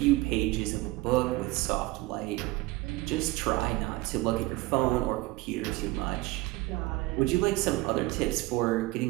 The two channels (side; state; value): left; quieter; 20.4 dB